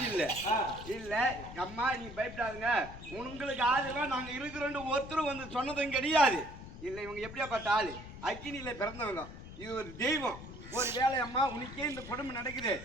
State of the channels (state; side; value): noise; left; rumble, 13 dB below the sound